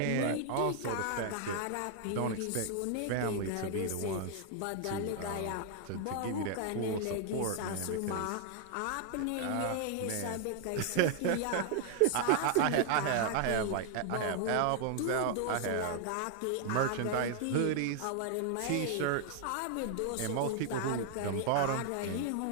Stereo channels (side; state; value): both; different; correlation 0.00